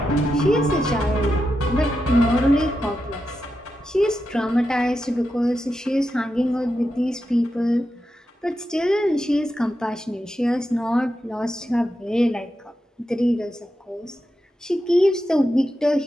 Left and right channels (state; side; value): normal; both; correlation 0.88